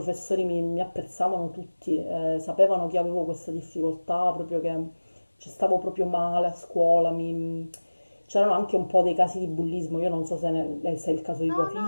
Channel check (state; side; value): inverted; both; correlation -1.00